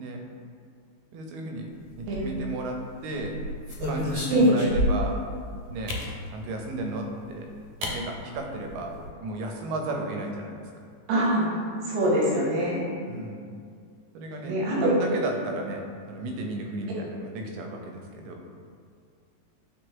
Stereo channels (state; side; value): late; left; 19 ms